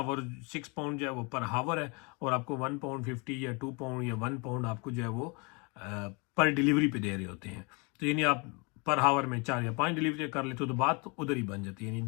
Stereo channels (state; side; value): quieter; right; 30.7 dB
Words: पाउंड जो है वो पर हावर है, और आपको 1 पाउंड 50 या 2 पाउंड या 1 पाउंड आपको जो है वो पर डिलीवरी पे दे रहे होते हैं। तो यानी आप पर हावर में 4 या 5 डिलीवरी कर लेते हो तो बात उधर ही बन जाती है, यानी